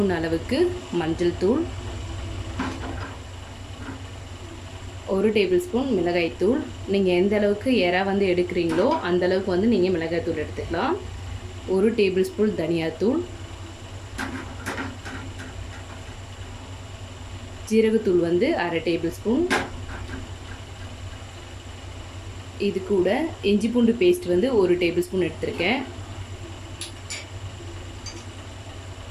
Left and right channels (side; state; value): both; identical; correlation 1.00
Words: அளவுக்கு மஞ்சள் தூள், 1 டேபிள் ஸ்பூன் மிளகாய்த்தூள். நீங்கள் எந்த அளவுக்கு எறா வந்து எடுக்கிறீங்களோ அந்த அளவுக்கு வந்து நீங்கள் மிளகாய்த்தூள் எடுத்துக்கலாம். 1 டேபிள் ஸ்பூன் தனியாத்தூள், ஜீரகத்தூள் வந்து 1/2 டேபிள் ஸ்பூன். இது கூட இஞ்சி பூண்டு பேஸ்ட் வந்து 1 டேபிள் ஸ்பூன் எடுத்திருக்கேன்.